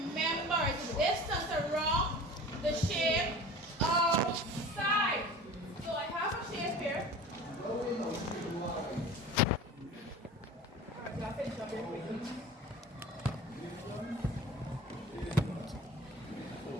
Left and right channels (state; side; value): normal; both; correlation 0.38